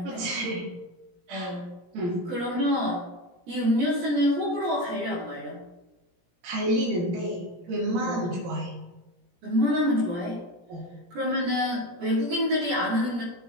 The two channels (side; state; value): left; late; 17 ms